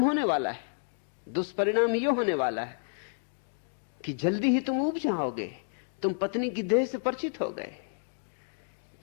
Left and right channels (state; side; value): silent; right; digital silence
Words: होने वाला है। दुष्परिणाम यह होने वाला है कि जल्दी ही तुम उब जाओगे। तुम पत्नी की देह से परिचित हो गए।